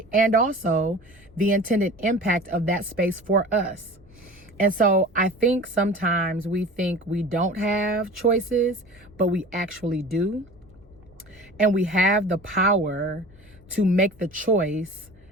And also the intended impact of that space for us. And so I think sometimes we think we don't have choices, but we actually do. And we have the power to make the choice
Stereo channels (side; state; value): both; normal; correlation 0.39